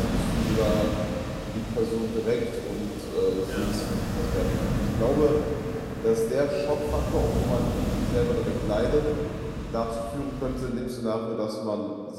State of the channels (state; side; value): identical; both; correlation 1.00